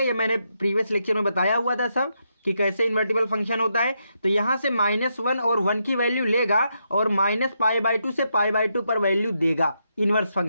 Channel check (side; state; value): both; inverted; correlation -0.81